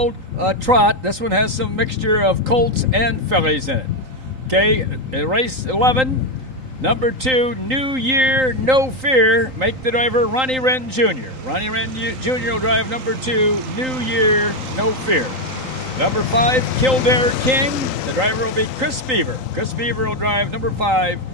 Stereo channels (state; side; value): late; left; 3.8 ms